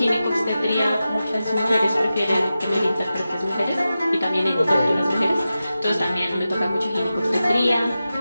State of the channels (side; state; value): both; inverted; correlation -0.93